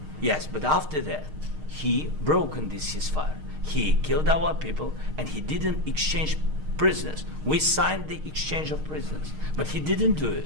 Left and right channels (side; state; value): left; late; 6.5 ms